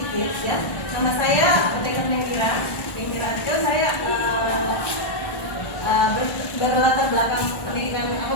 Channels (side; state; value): right; late; 1.4 ms